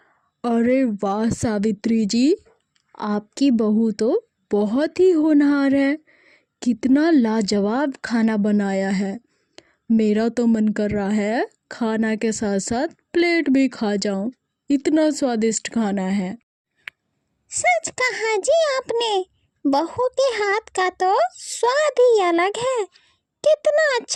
अरे वाह सावित्री जी, आपकी बहू तो बहुत ही होनहार है। कितना लाजवाब खाना बनाया है। मेरा तो मन कर रहा है खाना के साथ साथ प्लेट भी खा जाऊं, इतना स्वादिष्ट खाना है। सच कहा जी आपने, बहू के हाथ का तो स्वाद ही अलग है। कितना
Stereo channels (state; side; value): identical; both; correlation 1.00